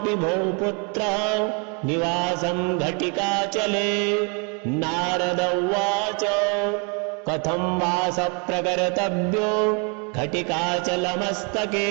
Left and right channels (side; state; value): left; quieter; 34.9 dB